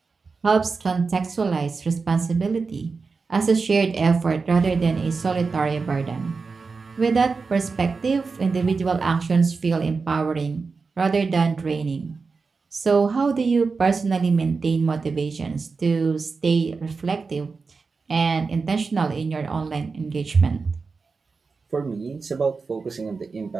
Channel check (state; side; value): quieter; left; 4.6 dB